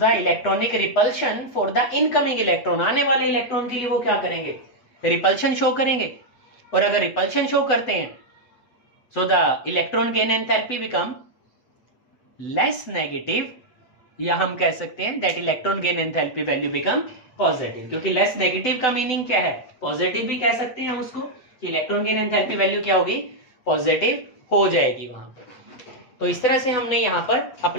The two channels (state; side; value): late; right; 7.9 ms